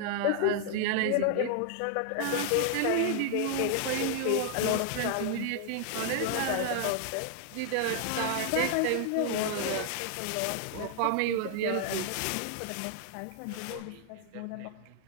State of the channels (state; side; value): different; both; correlation 0.00